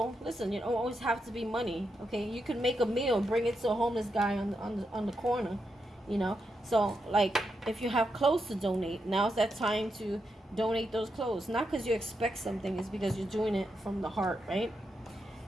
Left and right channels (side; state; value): both; normal; correlation 0.84